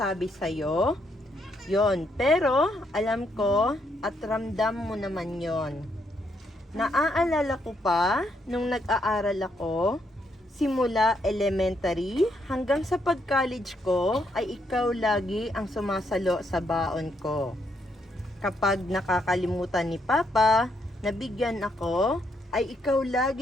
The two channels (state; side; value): normal; both; correlation 0.75